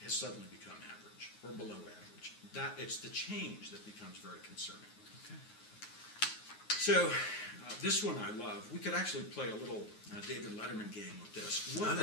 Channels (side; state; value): right; late; 9.5 ms